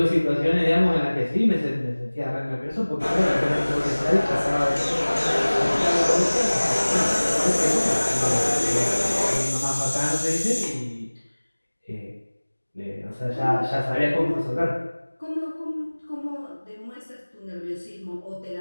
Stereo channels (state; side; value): inverted; both; correlation -1.00